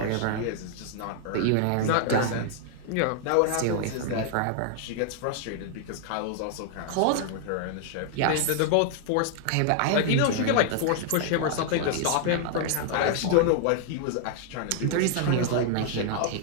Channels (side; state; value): both; different; correlation 0.00